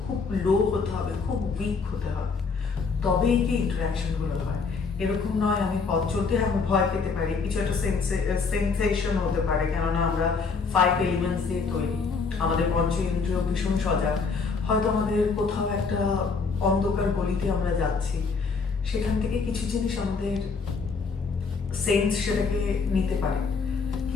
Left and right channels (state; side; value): quieter; right; 4.9 dB